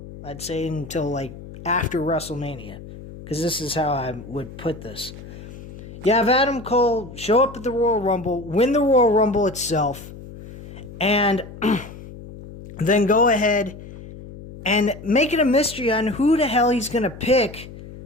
I'd say until like after WrestleMania. Because this is how I would put this. You have Adam Cole show up at the Royal Rumble, win the Royal Rumble itself, and then go ahead and make it a mystery on who the hell he's going to pick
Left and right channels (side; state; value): left; noise; hum, 15 dB below the sound